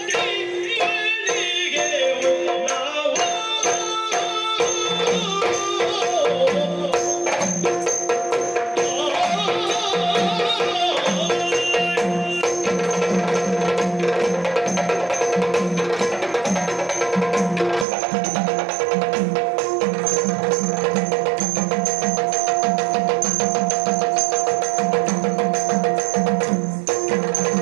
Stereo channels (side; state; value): left; drops out; at 17.9 s